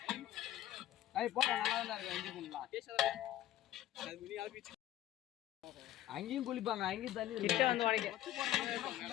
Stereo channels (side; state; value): right; quieter; 13.5 dB